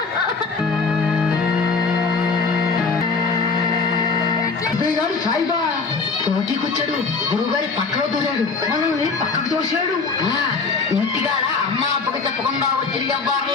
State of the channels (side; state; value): right; quieter; 4.5 dB